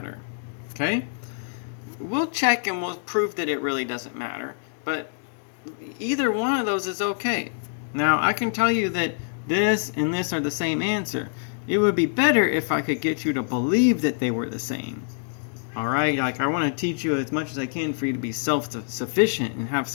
Okay? We'll check and we'll prove that it really doesn't matter. But either one of those is okay. Now, I can tell you that this and this are the same answer. It would be better if I could get you to believe that they were the same. Alright, like I want to teach you as much as I can for you to be self-sufficient and have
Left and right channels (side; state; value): right; silent; digital silence